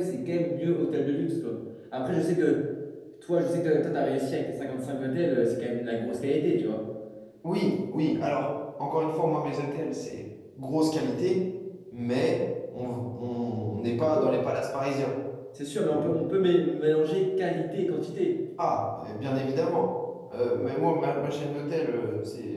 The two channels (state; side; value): identical; both; correlation 1.00